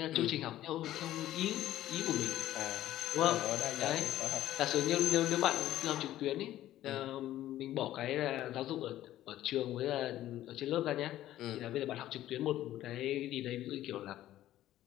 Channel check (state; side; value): quieter; right; 13.7 dB